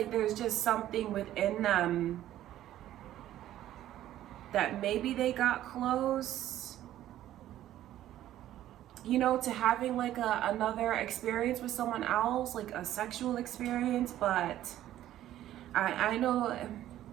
there's just something within them that maybe they got close, you know, to having like another experience with someone else, like a sexual experience. But I know,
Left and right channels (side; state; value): left; quieter; 13.0 dB